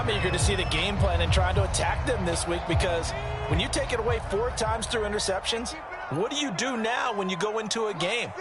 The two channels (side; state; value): both; identical; correlation 1.00